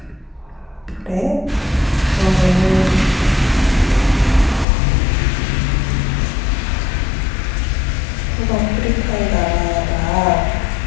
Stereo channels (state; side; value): drops out; right; at 4.7 s